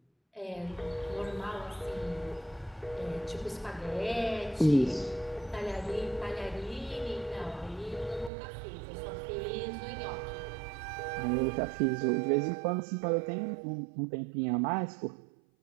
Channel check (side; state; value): left; drops out; at 8.3 s